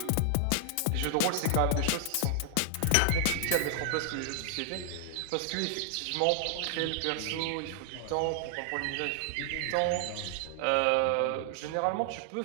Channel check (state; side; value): different; both; correlation 0.00